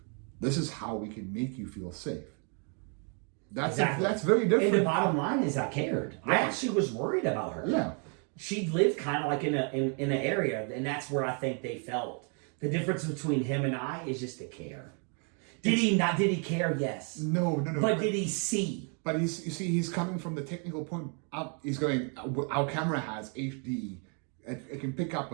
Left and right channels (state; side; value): quieter; left; 39.6 dB